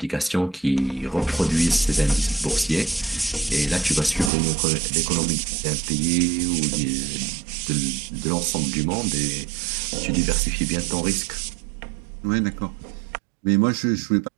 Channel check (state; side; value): drops out; left; at 4.3 s